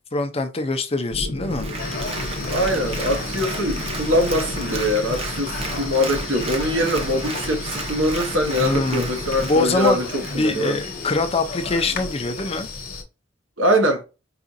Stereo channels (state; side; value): normal; both; correlation 0.29